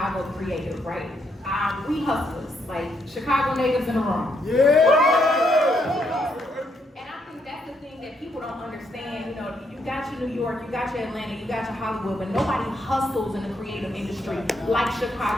creative, right? We hustlers, like Chicago natives in the room. Yeah! And I think that's the thing that people don't understand. You know, you got your New York, you got your Atlanta, you got your Hollywood, but nobody hustles in the creative industry like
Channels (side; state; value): both; normal; correlation 0.75